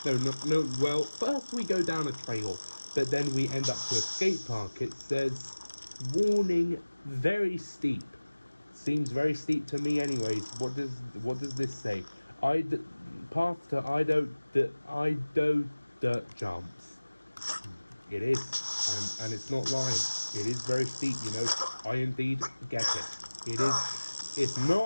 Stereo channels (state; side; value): inverted; both; correlation -1.00